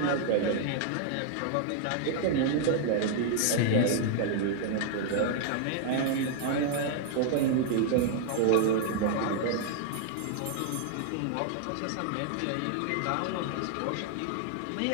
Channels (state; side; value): different; both; correlation 0.00